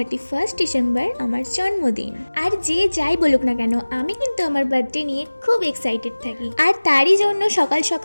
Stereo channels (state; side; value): inverted; both; correlation -1.00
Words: ডিসেম্বর আমার জন্মদিন। আর যে যাই বলুক না কেন, আমি কিন্তু আমার বার্থডে নিয়ে খুব এক্সাইটেড থাকি। আর তারই জন্য সকাল